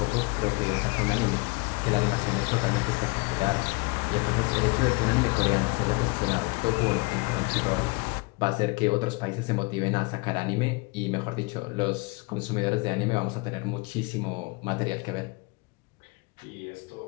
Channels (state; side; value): quieter; right; 28.1 dB